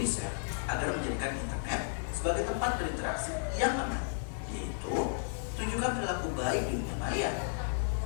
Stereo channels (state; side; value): silent; right; digital silence